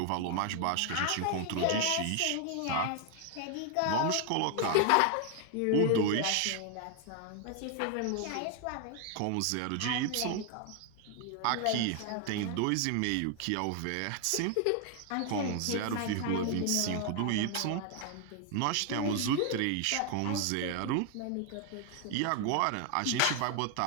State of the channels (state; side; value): different; both; correlation 0.00